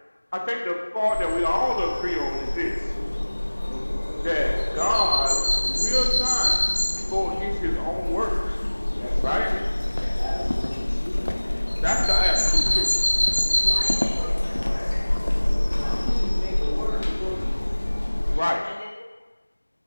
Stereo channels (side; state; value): both; inverted; correlation -1.00